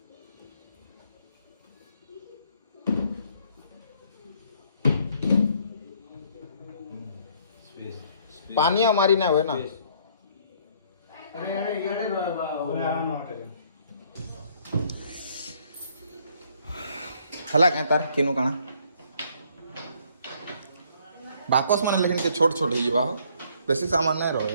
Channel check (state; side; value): inverted; both; correlation -0.64